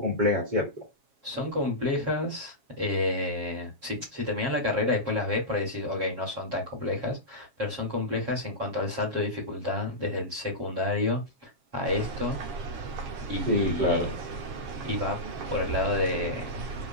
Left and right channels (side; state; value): left; late; 7.3 ms